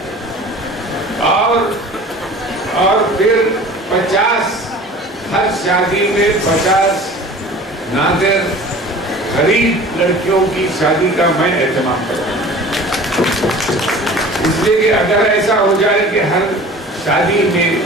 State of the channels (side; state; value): both; normal; correlation 0.42